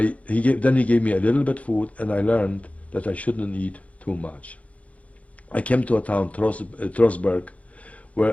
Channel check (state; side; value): late; right; 0.065 ms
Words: then he gave me a little bit food, and I learned that I shouldn't eat too much. I came to a town, Trostberg,